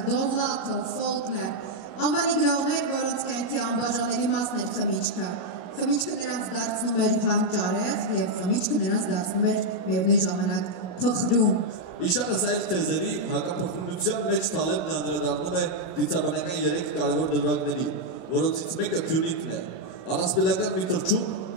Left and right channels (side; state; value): right; late; 16 ms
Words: Դովլաթով, Ֆոլկներ, անվանի գրողներ, որոնց կյանքի անբաժանելի մասն էր խմիչքը։ Խմիչքը նրանց դարձնում էր հանճարեղ եւ խմիչքը նրանց դարձնում էր միևնույն ժամանակ փխրուն։ Իշարս այլ թեզերի հակափոխությունության մեջ Թալեբն անդրադառնում է դիցաբանական 3 կարևոր դրվագների, որոնցից մեկը Փյունիկն է, առասպելական մի թռչուն,